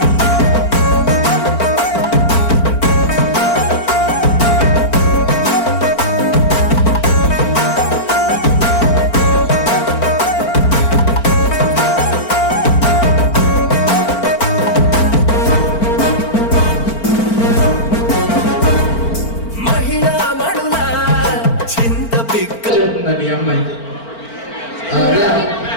మహిళా మడుల చింత పిక్క అది అమ్మాయికి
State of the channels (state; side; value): late; right; 4.4 ms